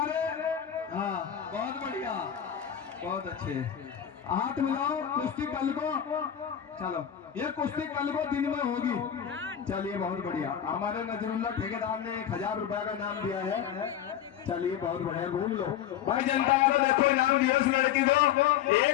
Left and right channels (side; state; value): right; quieter; 9.8 dB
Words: हाँ बहुत बढ़िया, बहुत अच्छे। हाथ मिलाओ। कुश्ती कल को, चलो ये कुश्ती कल को दिन में होगी। चलिए बहुत बढ़िया। हमारे नजरुल्ला ठेकेदार ने 1000 रुपए का नाम दिया है। चलिए बहुत बढ़िया, घूम लो भाई। जनता वालों देखो इनाम दिया उस लड़की को।